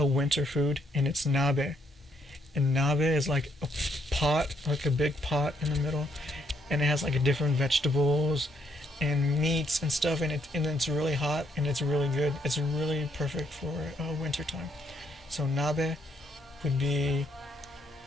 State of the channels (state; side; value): normal; both; correlation 0.72